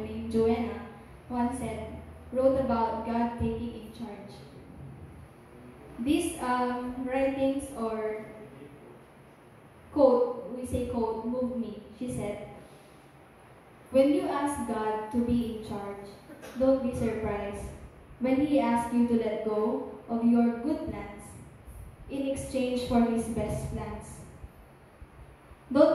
Joanna, once wrote about God taking in charge. These writings or quote, we say quote, moved me. She said, "When you ask God to be in charge, don't be surprised when He asks you to let go of your good plans in exchange for His best plans.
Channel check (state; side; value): identical; both; correlation 1.00